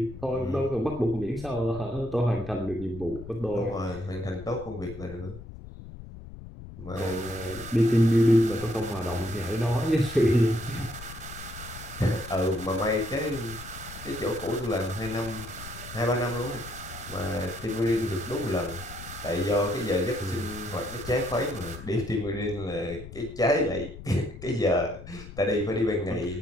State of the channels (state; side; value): noise; left; rumble, 14 dB below the sound